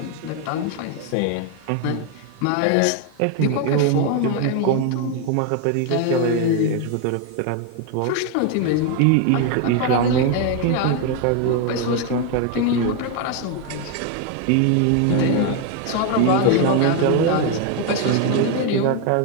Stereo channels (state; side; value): different; both; correlation 0.01